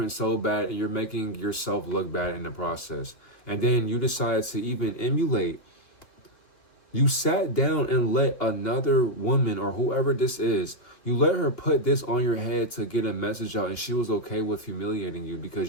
so bad, and you're making yourself look bad in the process. And then you decide to even emulate. You sat down and let another woman or whoever this is, you let her put this on your head to get a message out, and she was okay with humiliating you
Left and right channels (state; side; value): late; right; 2.9 ms